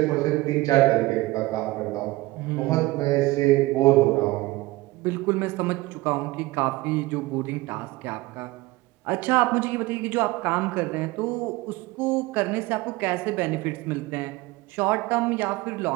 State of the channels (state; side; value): quieter; left; 20.0 dB